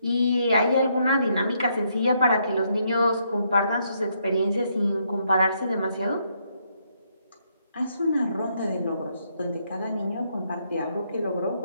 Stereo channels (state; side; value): inverted; both; correlation -0.74